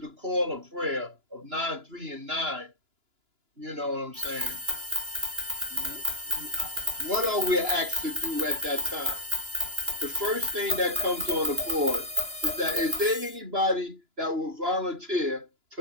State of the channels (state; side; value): late; left; 2.9 ms